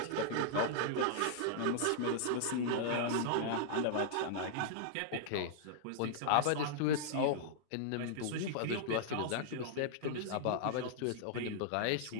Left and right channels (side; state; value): both; different; correlation -0.01